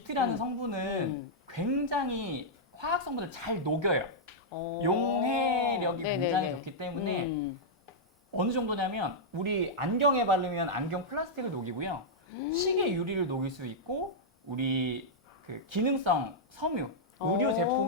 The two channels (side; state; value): both; normal; correlation -0.07